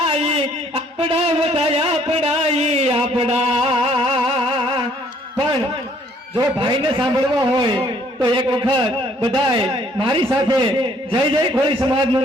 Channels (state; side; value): normal; both; correlation 0.63